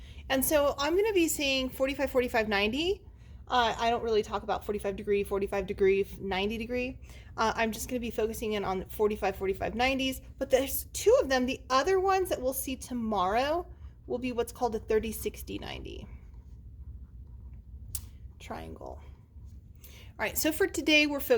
And so I'm going to be saying 45, 45, 90. I don't really talk about 45 degree, 90 degree. I'm just going to be focusing in on 45, 45, 90s. But there's two of them. The other ones that we'll see tomorrow will be what's called a 30, 60, 90 triangle. All right, so for today, we're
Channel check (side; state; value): both; identical; correlation 1.00